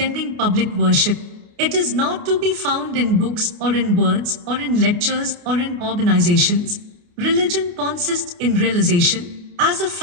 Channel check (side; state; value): left; late; 29 ms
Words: public worship. It is not to be found in books or in words or in lectures or in organizations. Religion consists in realization. As a